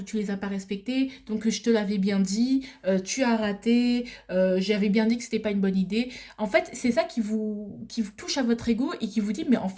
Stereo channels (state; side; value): identical; both; correlation 1.00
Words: tu les as pas respectés, donc je te l'avais bien dit, tu as raté, j'avais bien dit que c'était pas une bonne idée. En fait, c'est ça qui vous touche à votre ego et qui vous dit, mais en